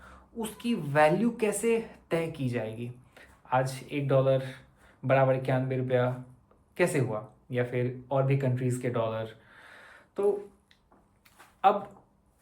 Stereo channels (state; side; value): identical; both; correlation 1.00